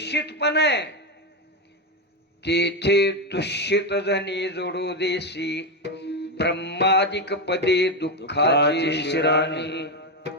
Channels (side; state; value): both; normal; correlation 0.10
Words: पण आहे. तेथे दुष्यित जणी जोडू देशी. ब्रह्मादिक पदे दुःखाची शिराणी.